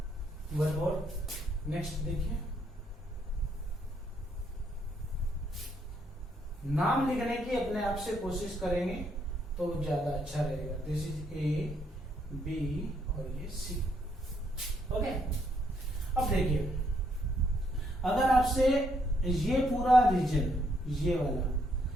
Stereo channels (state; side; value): normal; both; correlation 0.73